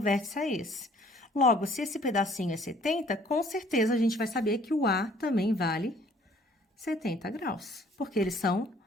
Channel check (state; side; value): normal; both; correlation 0.58